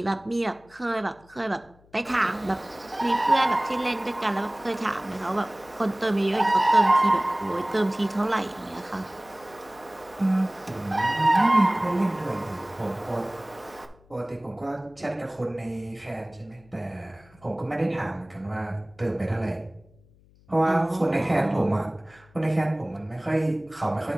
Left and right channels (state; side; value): noise; left; hum, 29 dB below the sound